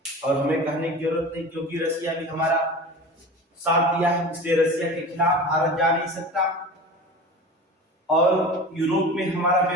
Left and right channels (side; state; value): both; normal; correlation 0.34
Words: और हमें कहने की जरूरत नहीं, क्योंकि रसिया भी हमारा साथ दिया है, इसलिए रसिया के खिलाफ भारत जा नहीं सकता, और यूरोप में हमारा